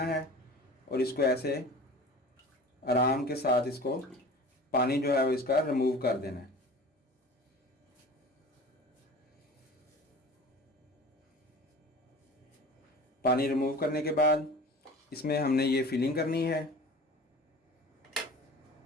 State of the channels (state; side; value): normal; both; correlation 0.39